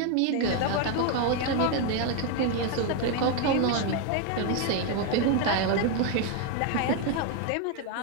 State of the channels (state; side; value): different; both; correlation 0.01